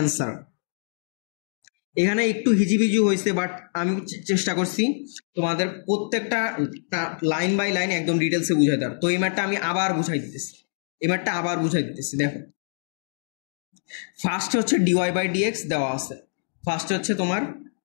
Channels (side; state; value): right; silent; digital silence